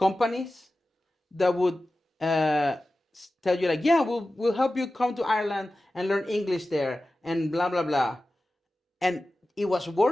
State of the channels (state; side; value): normal; both; correlation 0.95